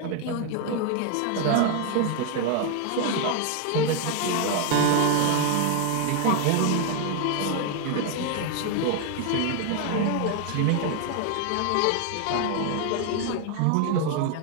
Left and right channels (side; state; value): both; different; correlation 0.01